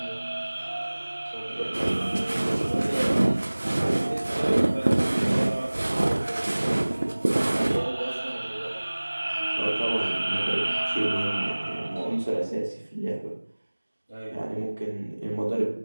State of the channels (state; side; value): inverted; both; correlation -1.00